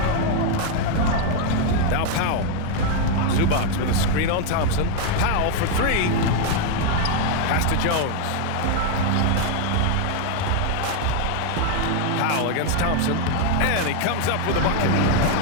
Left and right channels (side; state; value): both; different; correlation 0.00